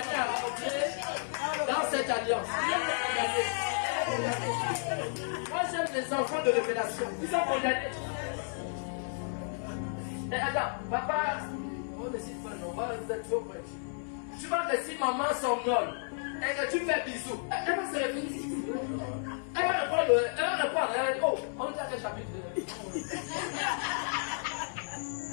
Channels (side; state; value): right; silent; 56 dB below the other